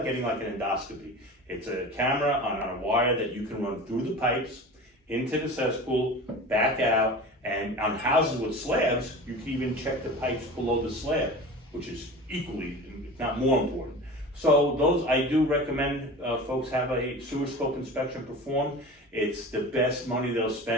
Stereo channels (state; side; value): normal; both; correlation 0.34